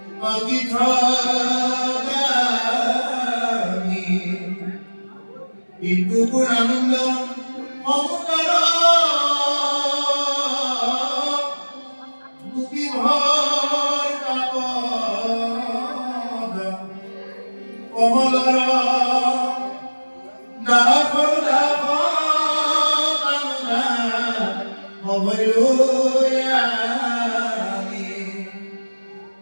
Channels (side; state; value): both; inverted; correlation -1.00